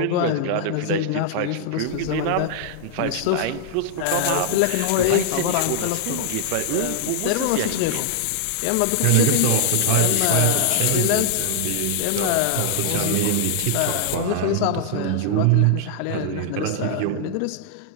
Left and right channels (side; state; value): both; different; correlation -0.01